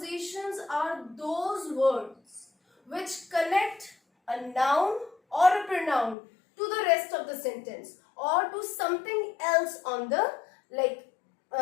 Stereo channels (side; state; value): right; drops out; at 6.2 s